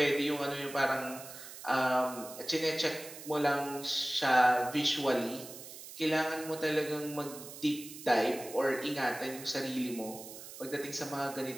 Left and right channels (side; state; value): right; noise; hiss, 13 dB below the sound